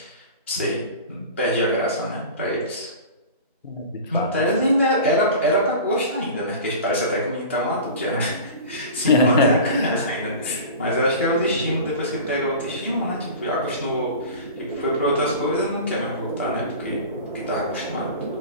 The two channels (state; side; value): inverted; both; correlation -0.35